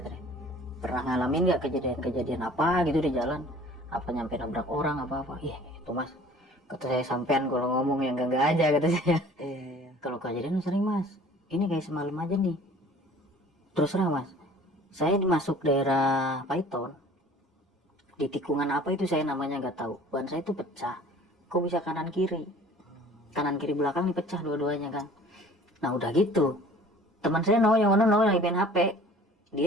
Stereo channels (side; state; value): both; normal; correlation 0.49